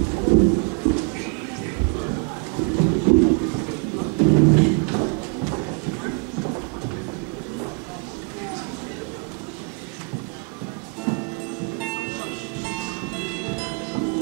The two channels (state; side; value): quieter; left; 33.7 dB